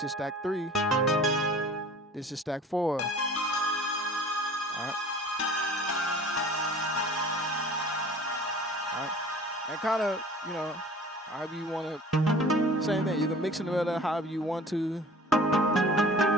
is stack 3. This is stack 4. All right. All right. And kind of, however you want to, same thing. You can mix it together however you want to. And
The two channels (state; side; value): normal; both; correlation 0.45